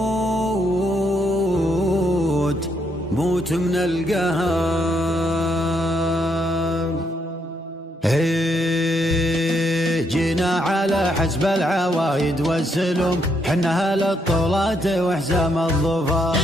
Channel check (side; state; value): both; normal; correlation 0.75